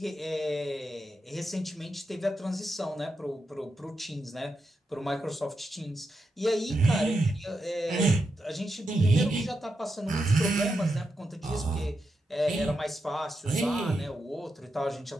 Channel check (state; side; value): normal; both; correlation 0.86